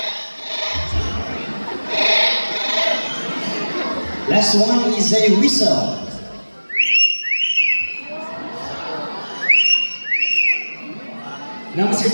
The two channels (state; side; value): inverted; both; correlation -1.00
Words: Last one is a whistle. Now, Mr.